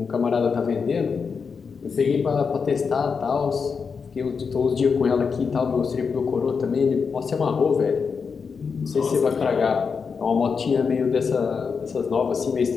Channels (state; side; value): quieter; right; 5.6 dB